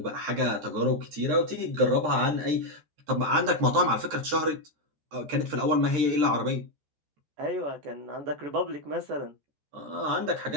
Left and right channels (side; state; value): left; late; 13 ms